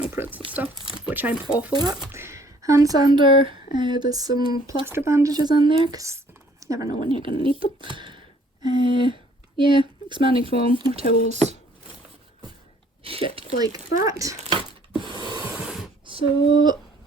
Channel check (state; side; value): normal; both; correlation 0.59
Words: prints and stuff, which I'm awful at. Hand sander. There's some plaster bandages in there because you never know when you're gonna need them. Yeah, expanding foam, more towels, shit like that. So